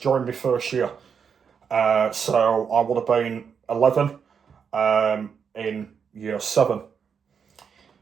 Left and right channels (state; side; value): quieter; left; 6.7 dB